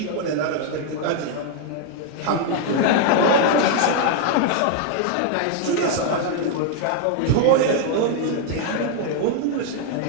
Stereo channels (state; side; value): different; both; correlation 0.00